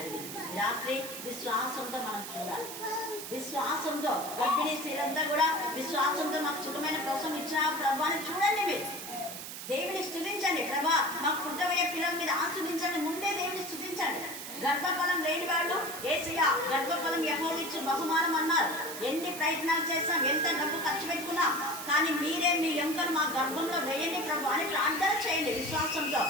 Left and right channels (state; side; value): noise; right; hiss, 9 dB below the sound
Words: రాత్రి విశ్వాసంతో మనం చూడాలి. విశ్వాసంతో గర్భిణీ స్త్రీలంతా కూడా విశ్వాసంతో మాకు సుఖమైన ప్రసవం ఇచ్చిన ప్రభు అని చూడండి. మీరు దేవుని స్తుతించండి. ప్రభా మాకు పుట్టబోయే పిల్లల మీద ఆస్వాదించండి. ముందే దేవుని స్తుతించండి. గర్భఫలం లేని వాళ్ళు యేసయ్య గర్భఫలం యెహోవాయిచ్చు బహుమానం అన్నారు. ఎన్ని ప్రయత్నాలు చేస్తాం, ఎంత డబ్బు ఖర్చు పెట్టుకున్నా, కానీ మీరే మీ ఎముకను మా గర్భంలో వేయండి ప్రభు అని ప్రార్థన చేయండి విశ్వాసంతో.